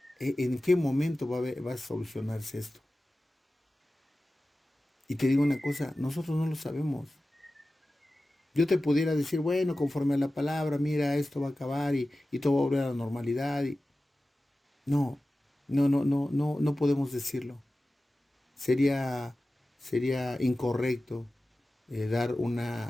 en qué momento va a solucionarse esto. Y te digo una cosa, nosotros no lo sabemos. Yo te pudiera decir, bueno, conforme a la palabra, mira, esto va a acabar y todo va a volver a la normalidad. No, no podemos decirlo. Sería, sería incorrecto dar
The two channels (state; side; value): normal; both; correlation 0.95